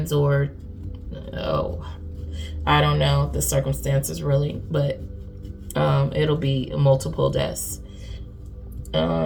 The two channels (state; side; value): identical; both; correlation 1.00